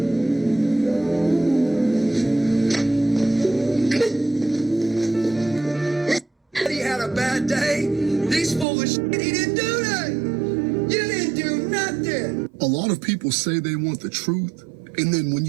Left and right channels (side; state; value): left; drops out; at 8.7 s